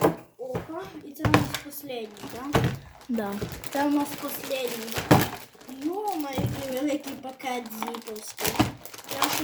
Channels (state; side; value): identical; both; correlation 1.00